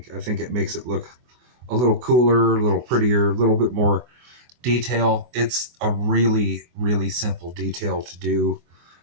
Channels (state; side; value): late; left; 24 ms